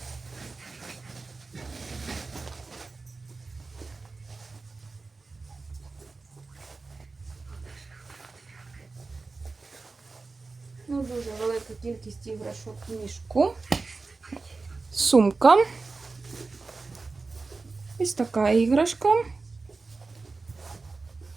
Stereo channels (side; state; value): left; quieter; 3.9 dB